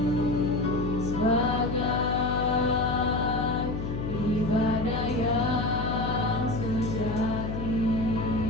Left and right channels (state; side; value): noise; left; hum, 4 dB below the sound